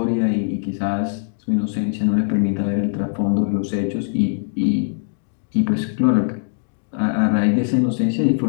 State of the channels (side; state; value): right; silent; digital silence